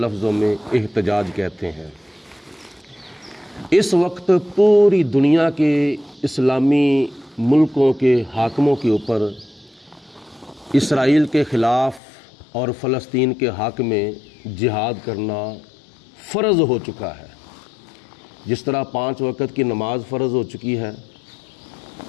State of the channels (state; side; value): drops out; right; at 12.0 s